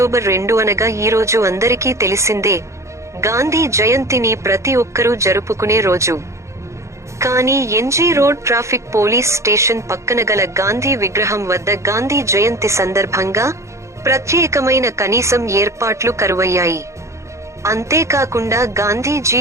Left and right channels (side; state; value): left; late; 0.14 ms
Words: 2 అనగా ఈ రోజు అందరికీ తెలిసిందే. గాంధీ జయంతిని ప్రతి ఒక్కరూ జరుపుకునే రోజు. కానీ NG road traffic police station పక్కన గల గాంధీ విగ్రహం వద్ద గాంధీ జయంతి సందర్భంగా ప్రత్యేకమైన కనీసం ఏర్పాట్లు కరువయ్యాయి. అంతేకాకుండా గాంధీజీ